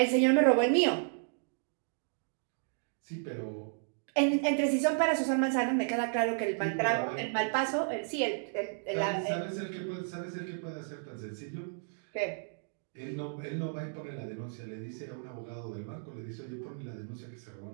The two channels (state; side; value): silent; left; digital silence